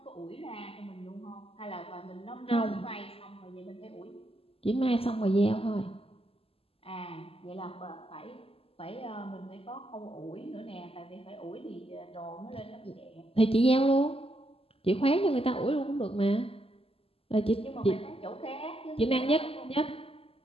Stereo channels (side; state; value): right; late; 0.28 ms